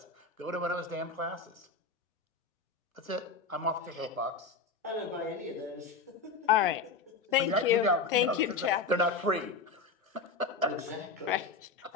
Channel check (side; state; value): right; quieter; 4.4 dB